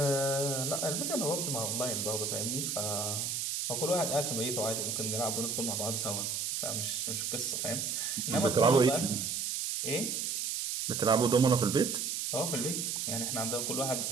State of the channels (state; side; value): noise; right; hiss, 1 dB below the sound